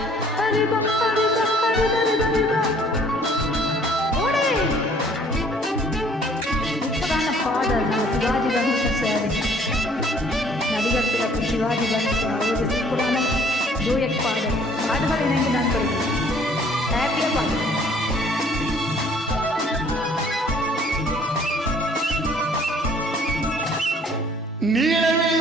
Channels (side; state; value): both; normal; correlation 0.57